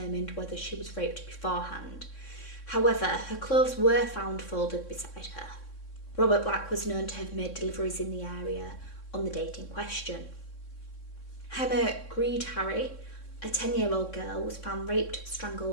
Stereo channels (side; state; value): right; late; 3.6 ms